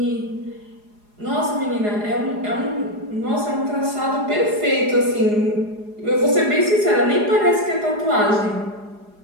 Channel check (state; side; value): late; left; 4.8 ms